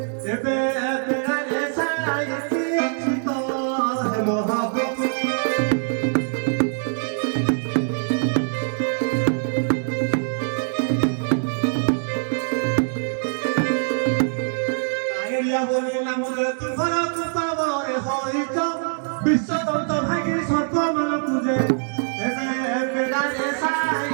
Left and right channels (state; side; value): silent; left; digital silence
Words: এবে এবে রে সাইতি অচিত হে মহাপ্রভু